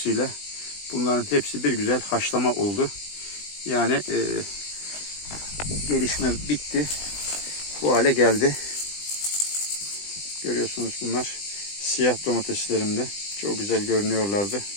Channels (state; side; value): late; right; 20 ms